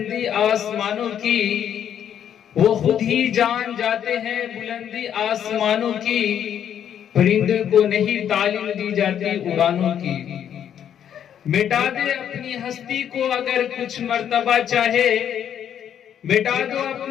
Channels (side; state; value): right; quieter; 9.4 dB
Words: آسمانوں کی، وہ خود ہی جان جاتے ہیں بلندی آسمانوں کی، پرندے کو نہیں تعلیم دی جاتی اڑانوں کی۔ مٹا دے اپنی ہستی کو اگر کچھ مرتبہ چاہے، مٹا دو